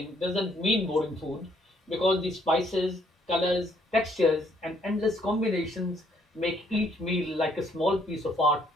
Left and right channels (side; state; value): both; normal; correlation 0.68